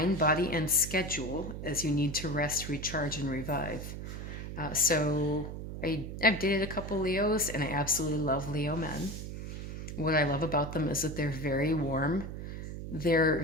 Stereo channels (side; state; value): right; noise; hum, 7 dB below the sound